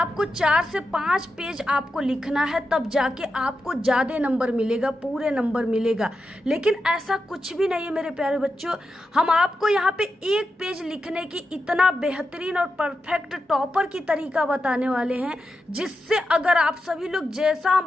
4 से 5 पेज आपको लिखना है, तब जाके आपको ज्यादा नंबर मिलेगा, पूरे नंबर मिलेगा। लेकिन ऐसा कुछ भी नहीं है मेरे प्यारे बच्चों। हम आपको यहाँ पे 1 पेज लिखने की इतना बेहतरीन और परफेक्ट टॉपर की तरीका बताने वाले हैं, जिससे अगर आप सभी लोग जैसा हम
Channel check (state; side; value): normal; both; correlation 0.89